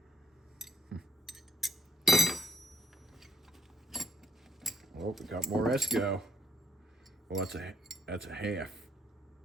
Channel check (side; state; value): both; normal; correlation 0.72